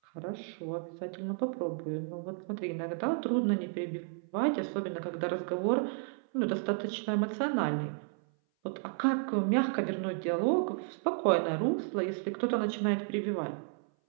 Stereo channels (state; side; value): silent; left; 56 dB below the other